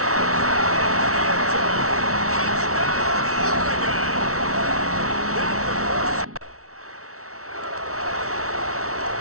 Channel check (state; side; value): late; left; 0.64 ms